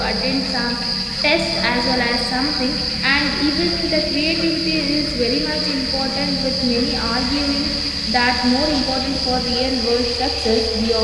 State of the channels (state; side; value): identical; both; correlation 1.00